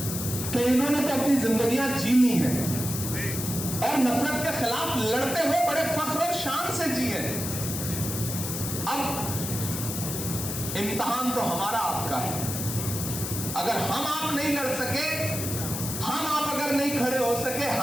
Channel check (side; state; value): left; noise; hiss, 5 dB below the sound